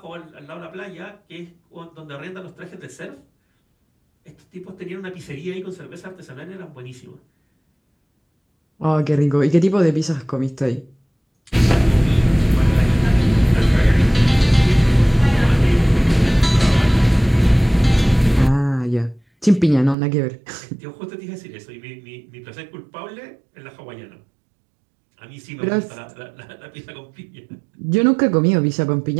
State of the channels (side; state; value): left; drops out; at 20.0 s